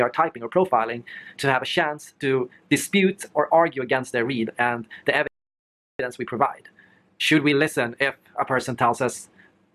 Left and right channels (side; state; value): both; identical; correlation 1.00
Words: are typing or profiling, to have a chance to dispute or argue against their read and the evidence we provide? Should we listen if a person tells us